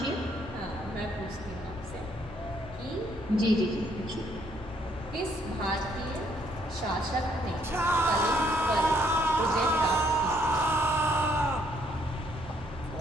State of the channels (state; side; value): normal; both; correlation 0.69